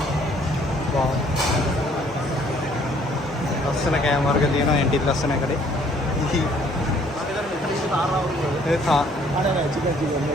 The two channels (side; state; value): both; normal; correlation 0.61